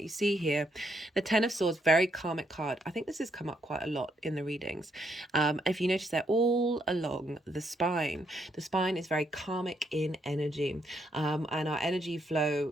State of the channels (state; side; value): normal; both; correlation 0.75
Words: You see here the Ten of Swords, very karmic card. I think this has come up quite a lot in the readings. If you notice, they're all along the spine. The spine is very karmic in energy, and our energy